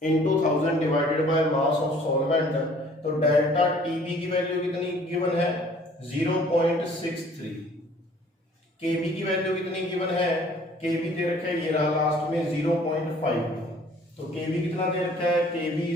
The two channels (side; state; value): both; normal; correlation 0.55